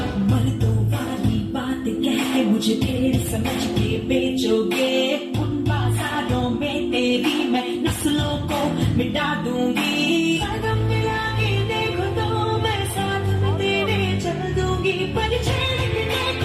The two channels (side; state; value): both; identical; correlation 1.00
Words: मर्दों वाली बात कह के मुझे ढेर समझ के बेचोगे उन बाजारों में तेरी मैं नस्लों को मिटा दूंगी कदम मिला के देखो तो मैं साथ में तेरे चल दूंगी पर छेड़ के